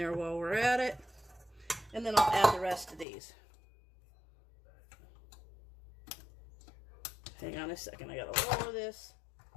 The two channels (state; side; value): drops out; right; at 3.1 s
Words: while we're at it. And then I'll add the rest of these. Hang on a second, I gotta lower this.